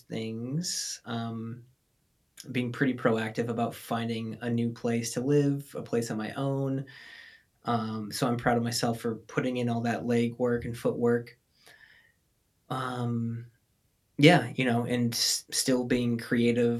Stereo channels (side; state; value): both; identical; correlation 1.00